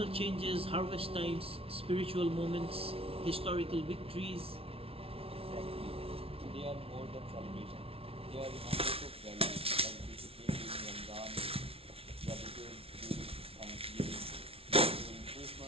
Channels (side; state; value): left; late; 0.27 ms